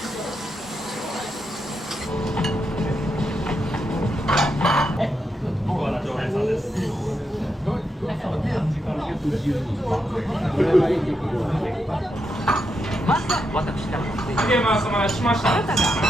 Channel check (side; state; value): both; normal; correlation 0.83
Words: 僕は常連さんです。ゲームはお待たせしました。あり